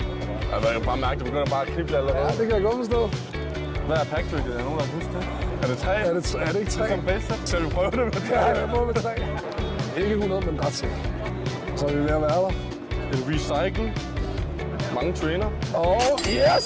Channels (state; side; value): identical; both; correlation 1.00